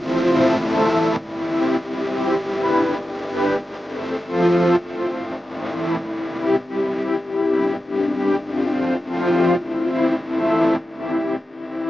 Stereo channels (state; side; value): normal; both; correlation 0.92